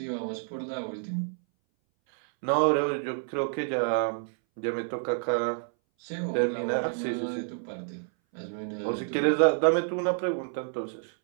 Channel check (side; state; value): left; silent; 59 dB below the other